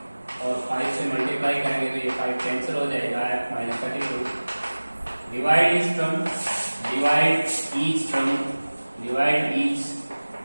और 5 से मल्टीप्लाई करेंगे तो ये 5 कैंसिल हो जाएगा, F minus 32। Divide each term, divide each term, divide each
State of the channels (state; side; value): inverted; both; correlation -1.00